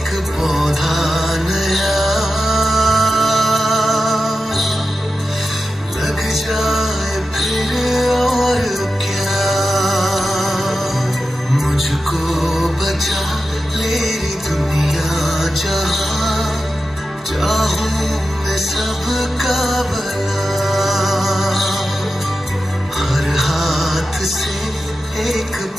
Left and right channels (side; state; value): both; normal; correlation 0.92